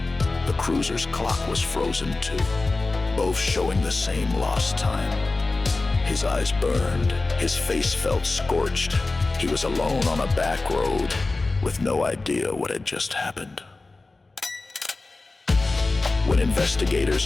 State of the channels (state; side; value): quieter; right; 3.4 dB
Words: The cruiser's clock was frozen too, both showing the same lost time. His eyes burned, his face felt scorched. He was alone on a back road, with no idea what had just happened. When